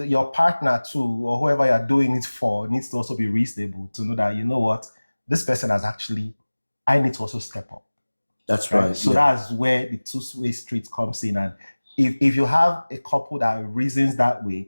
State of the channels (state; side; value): inverted; both; correlation -1.00